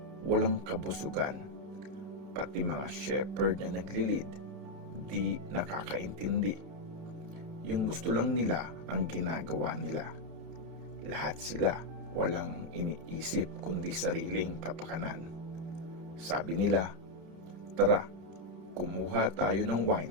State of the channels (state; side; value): late; left; 30 ms